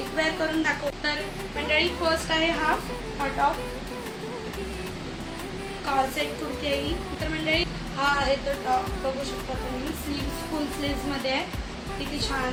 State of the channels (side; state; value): both; identical; correlation 1.00